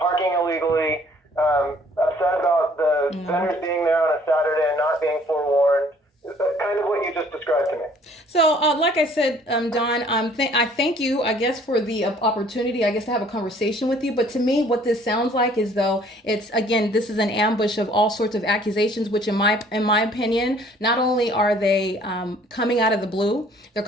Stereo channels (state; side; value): normal; both; correlation 0.58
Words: illegally, upset about the vendors being there on a Saturday and not being forewarned. Kind of what you just described to me. So, like I said, Don, I thank you, I guess, for the opportunity, I guess, to have a conversation with you. But to me, what this sounds like is though this is an ambush of all sorts of accusations, which in my opinion, not only are they coming out of the blue, they're